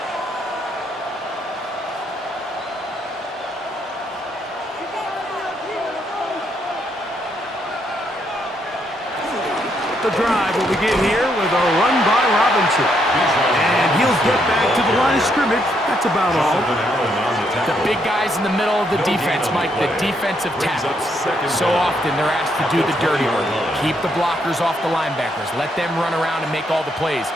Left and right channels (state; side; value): normal; both; correlation 0.75